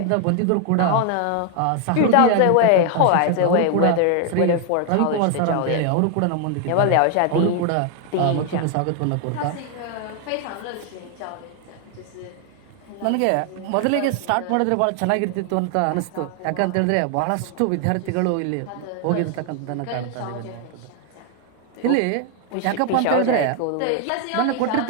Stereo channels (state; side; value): different; both; correlation 0.00